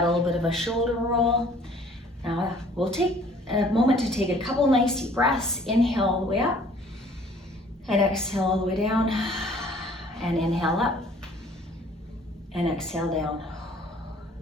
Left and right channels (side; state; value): both; normal; correlation 0.55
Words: a little bit of a shoulder roll. Now we'll take a moment to take a couple nice deep breaths. Inhale all the way up, and exhale all the way down, and inhale up, and exhale down.